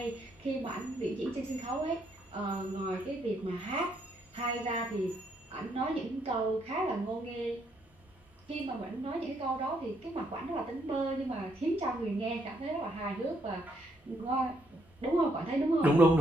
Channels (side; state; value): both; normal; correlation 0.73